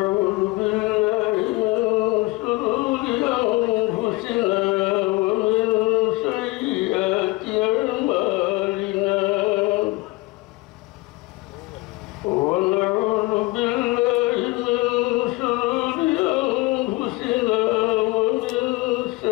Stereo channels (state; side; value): quieter; right; 22.4 dB